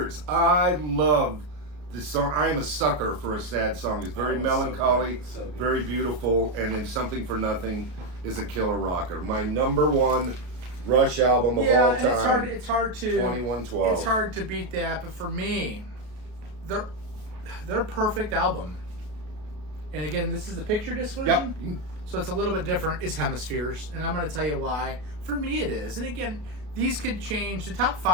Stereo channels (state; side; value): late; left; 33 ms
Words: I love this song. I am a sucker for a sad song. It's very melancholy, so good. Very beautiful, and then Something for Nothing is a killer rocker. My number 1 Rush album of all time. It's hard to 2112. It's hard to beat that, but for me, they're a perfect album. And again, this is the picture disc version. Yep. So it's a little bit different. It's Hemispheres, and I'm going to tell you why. For me, it is. And again, these could change. The top